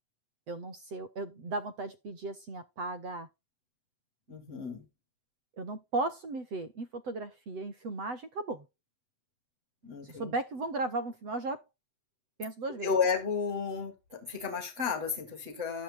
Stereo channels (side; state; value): left; late; 7.9 ms